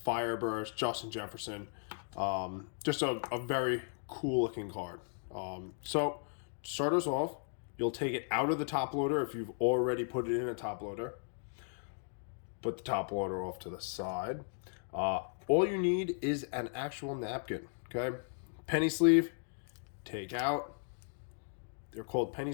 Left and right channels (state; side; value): silent; right; digital silence